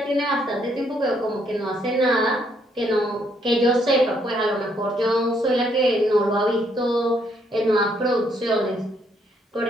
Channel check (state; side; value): normal; both; correlation 0.71